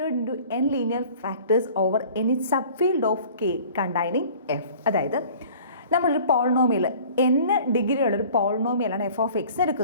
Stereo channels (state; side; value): inverted; both; correlation -0.48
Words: into n linear factors over any subfield of k containing f. അതായത് നമ്മളൊരു polynomial n degree ഉള്ളൊരു പോളിനോമിയലാണ് F of X